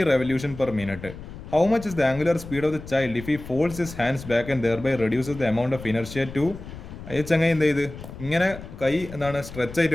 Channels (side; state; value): left; noise; rumble, 13 dB below the sound